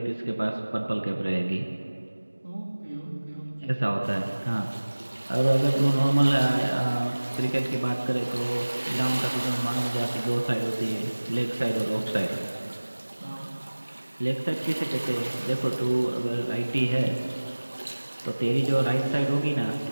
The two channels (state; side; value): inverted; both; correlation -1.00